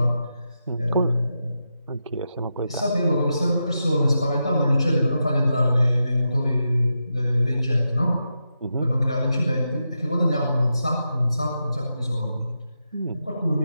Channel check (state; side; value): inverted; both; correlation -0.87